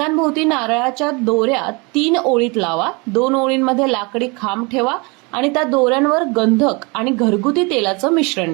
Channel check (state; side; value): quieter; left; 28.7 dB